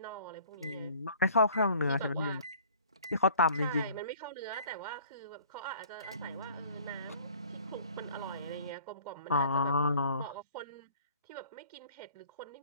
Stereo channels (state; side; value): inverted; both; correlation -0.51